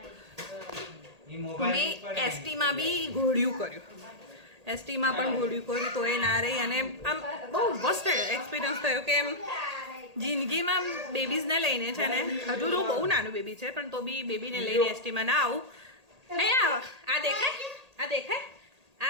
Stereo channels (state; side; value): late; left; 1.8 ms